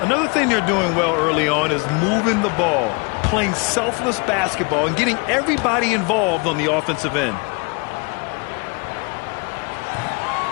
Another thing they're doing well early on is moving the ball, playing selfless basketball, and getting everybody involved on the offensive end.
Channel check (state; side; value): quieter; right; 31.9 dB